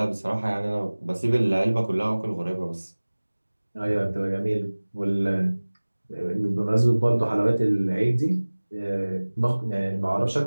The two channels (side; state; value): both; inverted; correlation -1.00